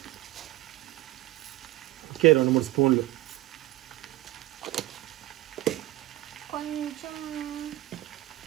ఓకే 2-3 స్పూన్లు,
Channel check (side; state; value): left; quieter; 16.6 dB